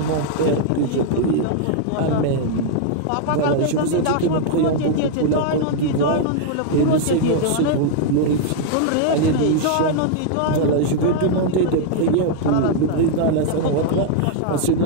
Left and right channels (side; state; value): both; different; correlation 0.00